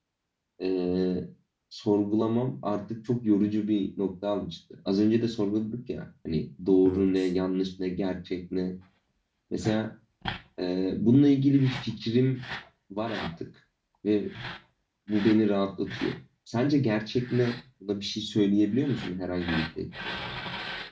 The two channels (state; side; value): identical; both; correlation 1.00